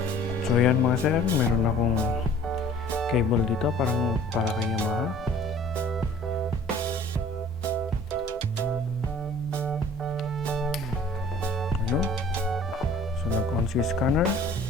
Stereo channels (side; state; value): both; normal; correlation 0.51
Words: So yan mga sir, meron akong cable dito para kay Yamaha. Ano? So nag-on si scanner.